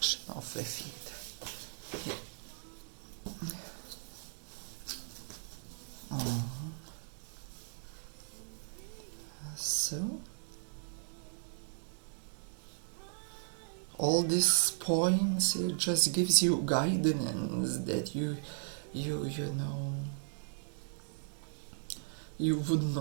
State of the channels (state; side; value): silent; left; digital silence